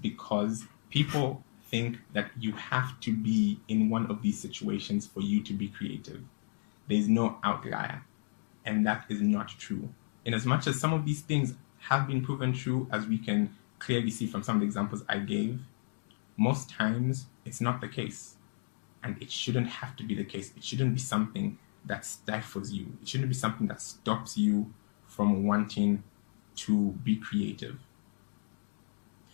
because people think that you have to be in one of these situations for you to be creative. There's no outlier, and that is not true. In as much as some of these things have been proven true, as we can clearly see from some of the examples I gave, most times it's not the case, and it shouldn't have to be the case. It shouldn't be something that stifles you. It shouldn't be something that stops you from wanting to be creative.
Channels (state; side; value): silent; right; digital silence